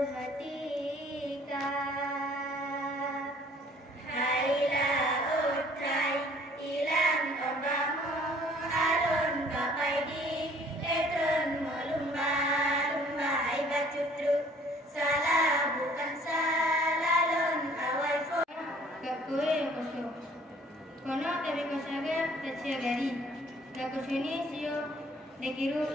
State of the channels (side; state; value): both; normal; correlation 0.56